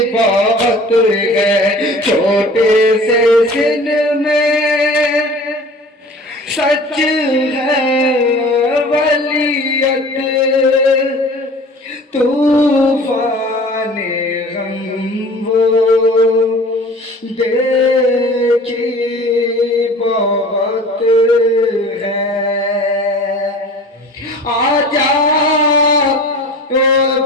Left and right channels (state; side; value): normal; both; correlation 0.43